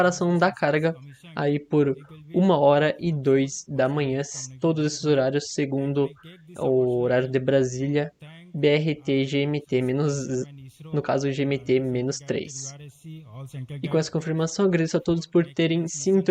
da carga aí por 1h02 da manhã, todos esses horários segundo o horário de Brasília, BRT, GMT, no caso GMT-3. E com essa confirmação, agradeço a todos por terem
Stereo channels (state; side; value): identical; both; correlation 1.00